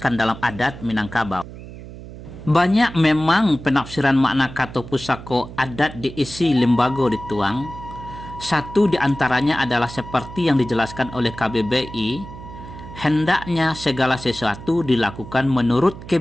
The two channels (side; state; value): right; noise; hum, 14 dB below the sound